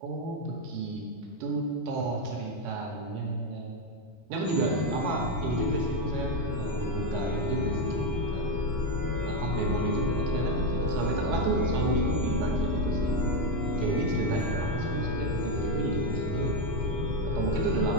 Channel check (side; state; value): both; normal; correlation 0.08